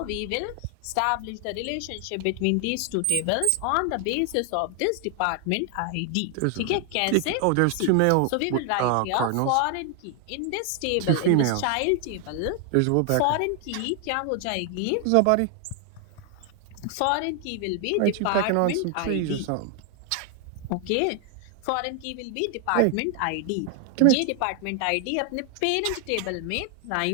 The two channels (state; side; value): different; both; correlation 0.00